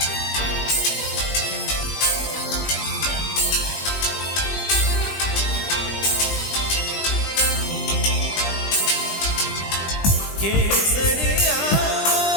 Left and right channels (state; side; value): late; right; 20 ms